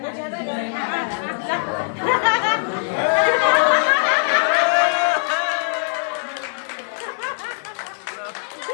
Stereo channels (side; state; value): right; silent; 65 dB below the other